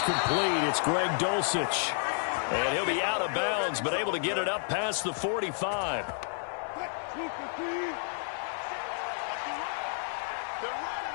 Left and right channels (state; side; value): silent; right; digital silence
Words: complete. It's Greg Dulcich. And he'll be out of bounds, but able to get it up past the 45.